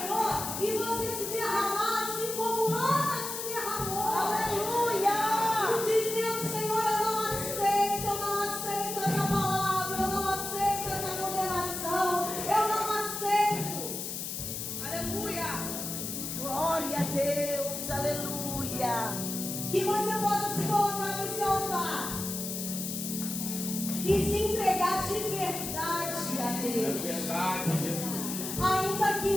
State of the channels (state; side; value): noise; left; hiss, 5 dB below the sound